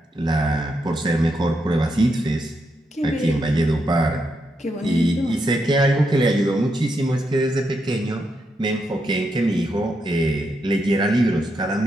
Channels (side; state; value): both; normal; correlation 0.82